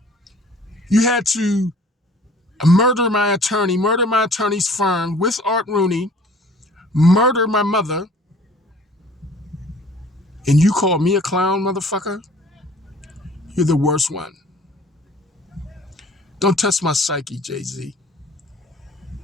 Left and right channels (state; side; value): normal; both; correlation 0.51